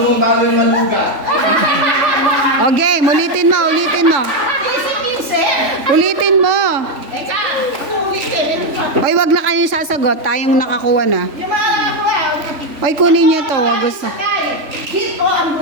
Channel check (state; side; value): late; left; 3.5 ms